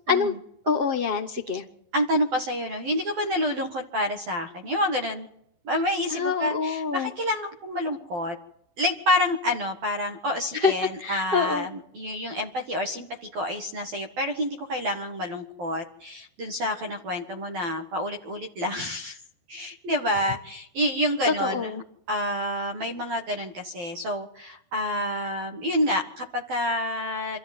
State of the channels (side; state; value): left; late; 12 ms